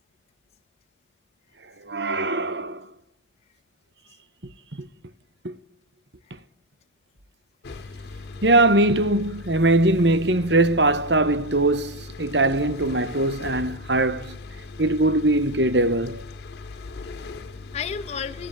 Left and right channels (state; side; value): normal; both; correlation 0.07